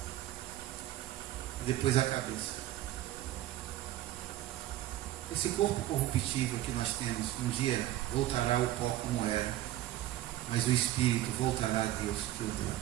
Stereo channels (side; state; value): left; quieter; 14.3 dB